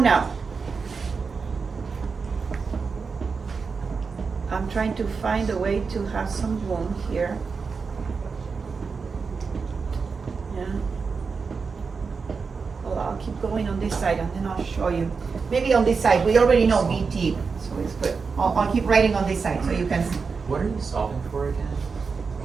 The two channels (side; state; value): left; quieter; 5.0 dB